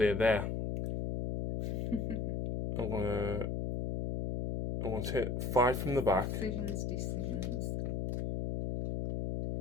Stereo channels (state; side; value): noise; left; hum, 1 dB below the sound